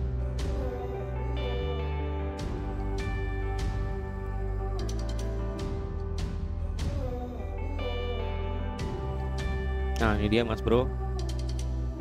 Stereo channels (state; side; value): identical; both; correlation 1.00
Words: Nah ini dia Mas Bro,